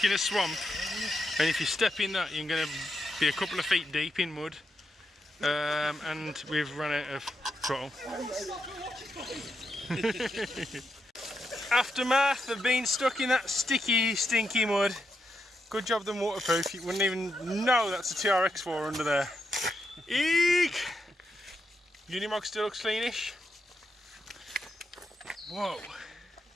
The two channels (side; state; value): both; normal; correlation 0.83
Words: in a swamp, and if you step in that, you're going to be a couple of feet deep in mud. And we've run out of throttle. Aftermath of being stuck in that sticky, stinky mud. Good job them waterproof. You wouldn't even know that's a TRX4 under there. Eek! Unimog still looks cleanish. Whoa.